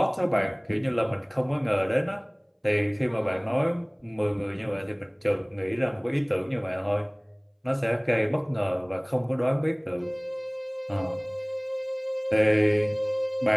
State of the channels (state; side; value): identical; both; correlation 1.00